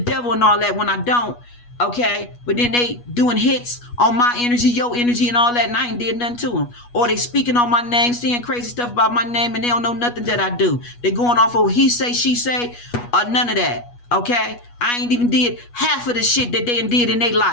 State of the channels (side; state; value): right; late; 8.3 ms